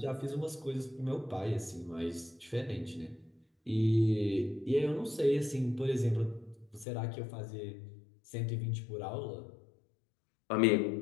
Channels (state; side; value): drops out; right; at 6.9 s